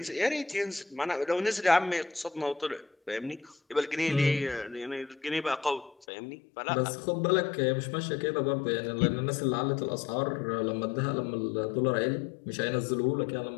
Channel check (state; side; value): drops out; right; at 6.1 s